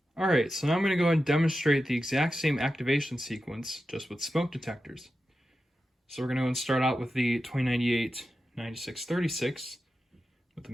Alright, so now I'm going to go ahead and demonstrate the exact same activation sequence, just with smoke detectors. So we're going to start out with the 2098-9636 with the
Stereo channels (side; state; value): both; normal; correlation 0.91